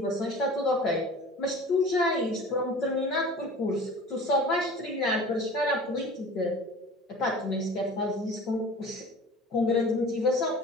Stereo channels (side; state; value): both; normal; correlation 0.41